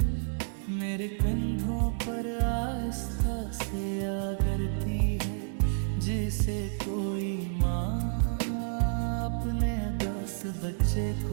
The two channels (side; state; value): left; silent; 57 dB below the other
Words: मेरे कंधों पर आहिस्ता से आ गिरती है, जिसे कोई माँ अपने 10 बच्चे